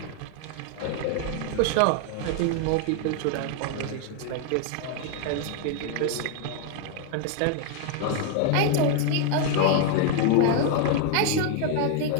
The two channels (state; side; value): different; both; correlation 0.00